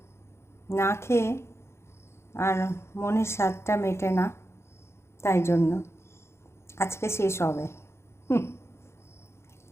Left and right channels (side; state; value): right; late; 0.13 ms